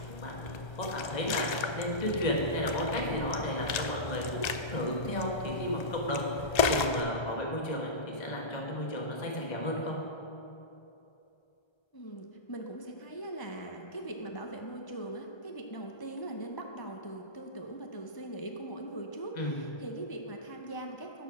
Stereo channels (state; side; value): late; right; 1.3 ms